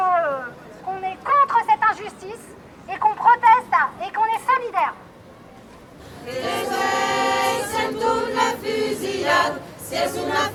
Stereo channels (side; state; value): both; identical; correlation 1.00